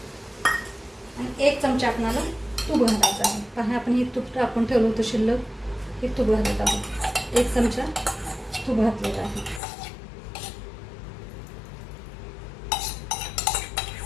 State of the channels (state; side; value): drops out; right; at 9.6 s